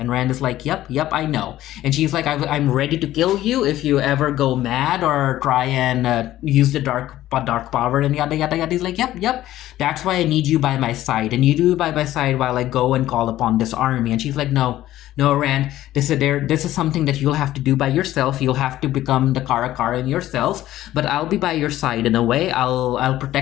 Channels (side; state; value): right; quieter; 14.2 dB